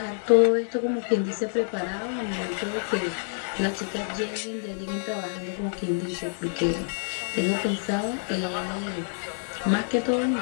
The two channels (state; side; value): silent; right; digital silence